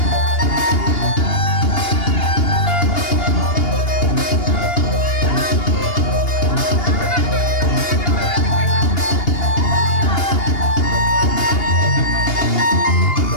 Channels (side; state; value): right; late; 2.8 ms